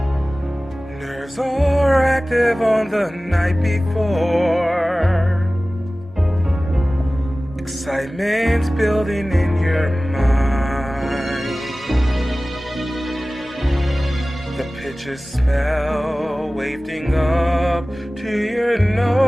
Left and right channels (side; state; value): both; normal; correlation 0.97